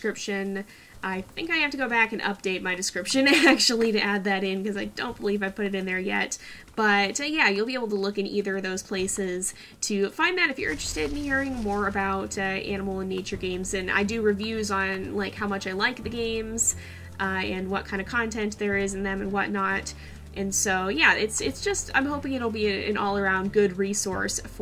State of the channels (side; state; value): both; identical; correlation 1.00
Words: I think I have to go back and update my description, actually, to add that in, because I don't believe I put it in there yet. But, yeah, you'll be able to look in either of those places to find that if you're interested in hearing more about animal and nature games. And I do reviews on, like, how much I like the games, and what kind of content there is in them and whatnot. And so, yeah, it's just, I'm hoping it'll be an all-around good resource